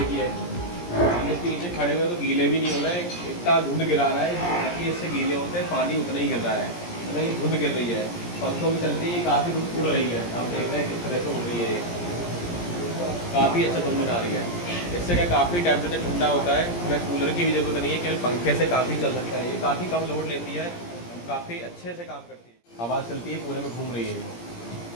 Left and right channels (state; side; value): late; right; 17 ms